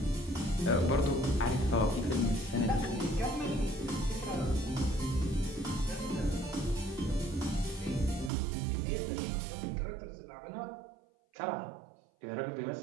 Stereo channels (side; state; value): left; drops out; at 8.3 s